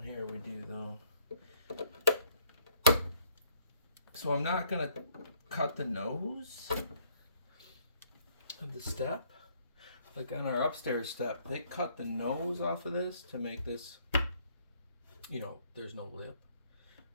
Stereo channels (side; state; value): both; inverted; correlation -0.66